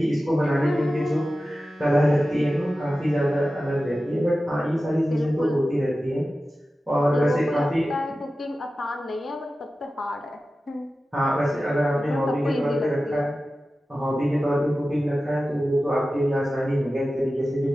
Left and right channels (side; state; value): both; normal; correlation 0.94